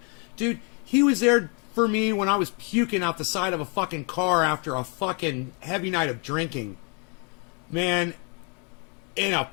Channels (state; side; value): quieter; right; 36.1 dB